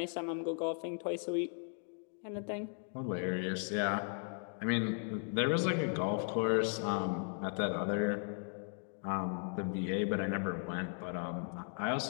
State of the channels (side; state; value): right; silent; 53 dB below the other